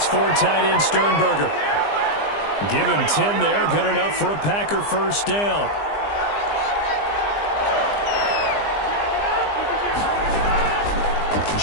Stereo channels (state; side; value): late; right; 20 ms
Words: tight end Sternberger. Give him 10 there. Good enough for a Packer 1st down.